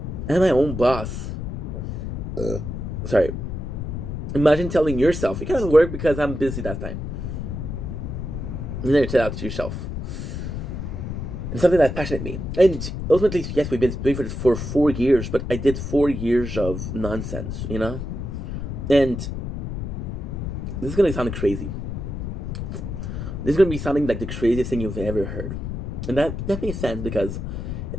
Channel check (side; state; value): left; noise; rumble, 5 dB below the sound